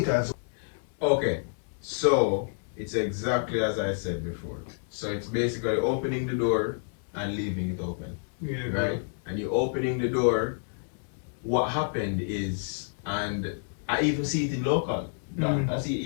as well. Okay, so it's exactly as I said before. So it's basically opening the door and leaving it open. Yeah, right? And you opening the door. What happened is, and I even see it in local.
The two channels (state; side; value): silent; right; 59 dB below the other